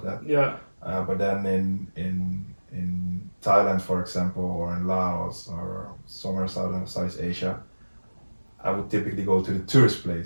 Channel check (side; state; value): both; inverted; correlation -1.00